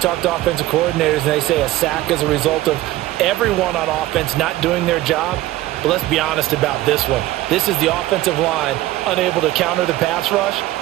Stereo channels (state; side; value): quieter; left; 16.2 dB